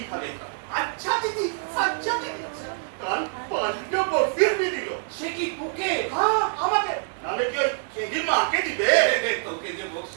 খাবে। আচ্ছা দিদি, আচ্ছা দিদি, কাল 5টা বকশিস भी দিল। সে কি তোকে? হ্যাঁ আমাকে, নালে কি ওই খেদির মাকে দিবে? তোকে যে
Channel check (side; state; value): left; silent; digital silence